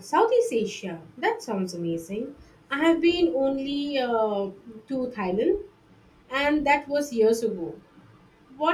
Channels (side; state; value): both; identical; correlation 1.00